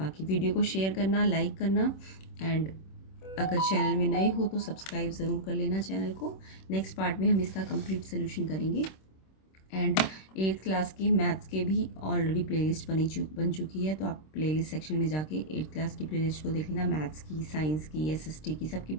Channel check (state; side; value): late; right; 26 ms